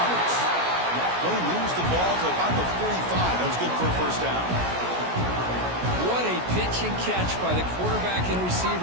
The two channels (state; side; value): late; left; 16 ms